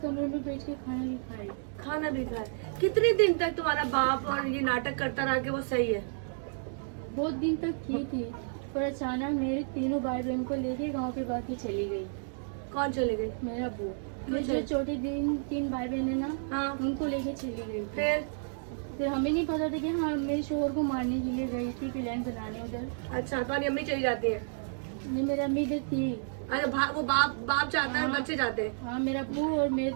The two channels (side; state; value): left; silent; digital silence